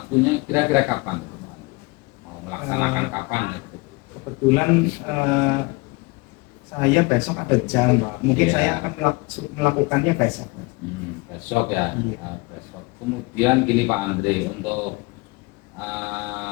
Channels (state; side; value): quieter; right; 26.2 dB